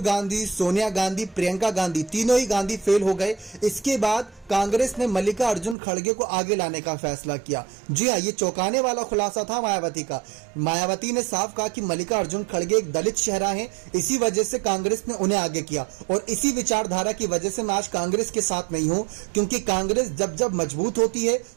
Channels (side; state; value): left; drops out; at 5.8 s